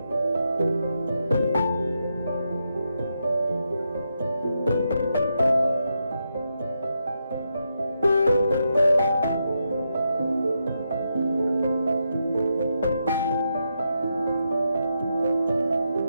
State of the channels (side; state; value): both; inverted; correlation -0.84